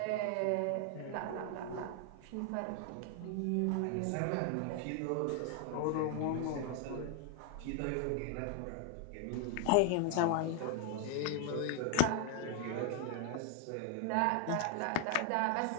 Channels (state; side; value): different; both; correlation 0.00